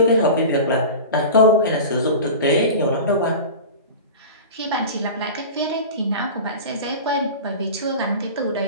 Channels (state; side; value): inverted; both; correlation -0.32